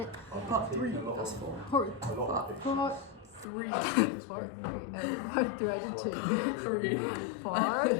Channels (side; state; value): right; drops out; at 3.5 s